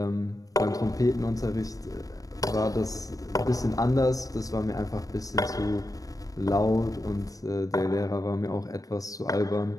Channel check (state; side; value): late; right; 0.17 ms